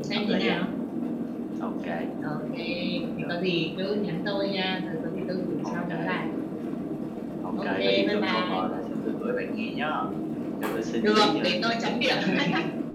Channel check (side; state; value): both; identical; correlation 1.00